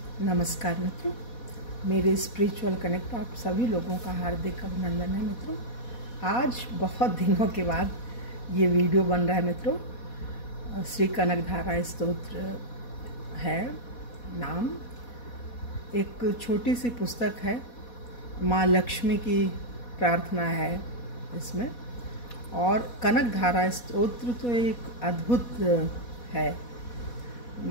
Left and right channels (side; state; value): right; late; 4.1 ms